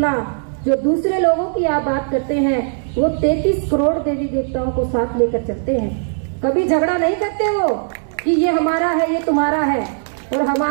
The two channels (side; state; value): left; silent; digital silence